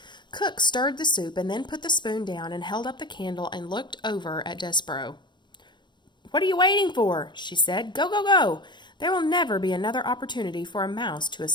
Cook stirred the soup and then put the spoon down and held up the candle and looked over at Despereaux. "What are you waiting for?" she said. "Go, go, go! There will never be another opportunity for a mouse to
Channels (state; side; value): late; right; 0.22 ms